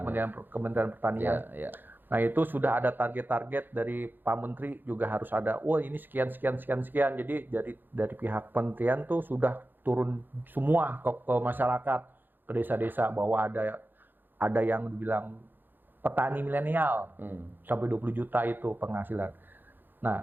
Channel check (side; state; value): left; late; 0.093 ms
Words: Kementerian Pertanian. Iya. Nah itu sudah ada target-target dari Pak Menteri juga harus ada. Wah ini sekian. Jadi dari pihak Kementerian tuh sudah turun semua ke masyarakat, ke desa-desa bahwa ada yang dibilang petani milenial sampai 20 juta itu penghasilan.